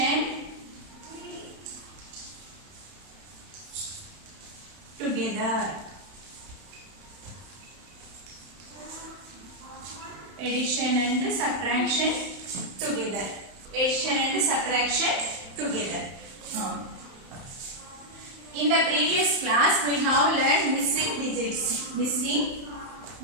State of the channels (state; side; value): late; left; 31 ms